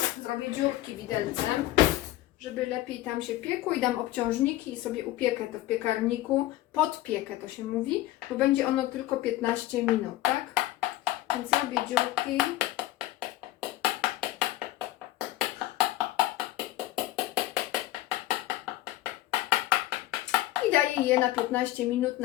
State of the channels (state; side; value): quieter; right; 15.7 dB